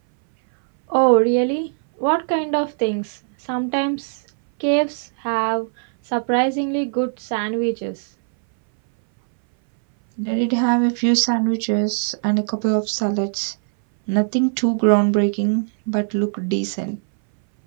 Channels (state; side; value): silent; left; 62 dB below the other